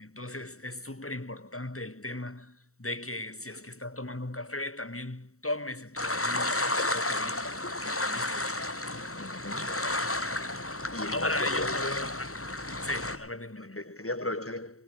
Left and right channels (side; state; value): right; late; 0.64 ms